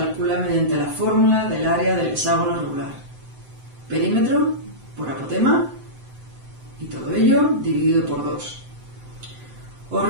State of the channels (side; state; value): left; late; 7.8 ms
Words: mediante la fórmula del área del hexágono regular. Perímetro por apotema y todo ello dividido por 2. Os